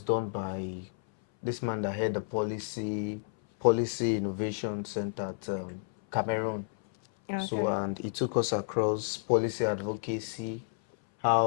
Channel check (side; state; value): right; silent; 57 dB below the other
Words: done by this man that had the policy innovation center at Cameroon. So, Okay. and he took us across policy advocacy,